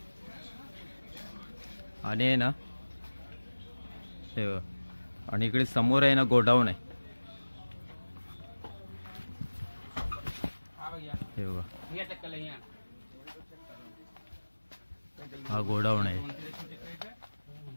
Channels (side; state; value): both; inverted; correlation -1.00